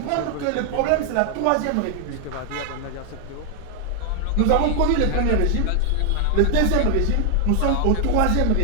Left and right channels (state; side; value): different; both; correlation 0.00